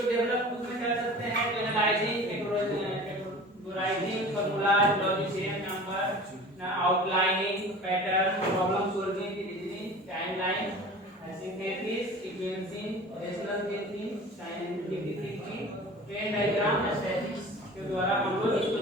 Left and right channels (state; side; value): normal; both; correlation 0.40